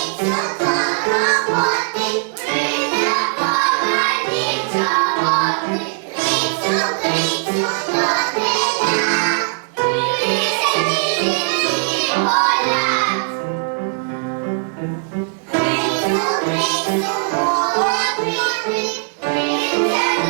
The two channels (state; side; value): silent; left; digital silence